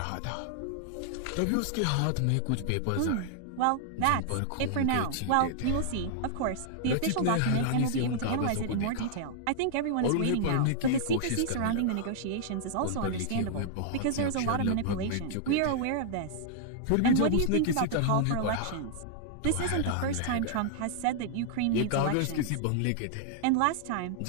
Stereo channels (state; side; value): different; both; correlation -0.01